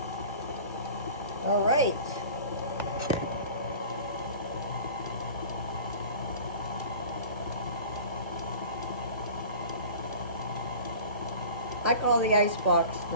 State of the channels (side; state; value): both; inverted; correlation -0.41